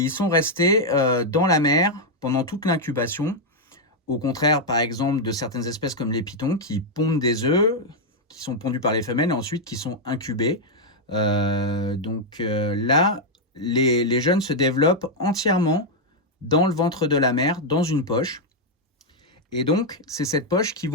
ils sont restés dans la mer pendant toute l'incubation. Au contraire, par exemple, de certaines espèces comme les pitons qui pondent des œufs, qui sont pondus par les femelles et ensuite qui sont incubés. Là, les jeunes se développent entièrement dans le ventre de la mère, dans une poche. Et donc, c'est cette poche qu'ils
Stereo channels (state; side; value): normal; both; correlation -0.01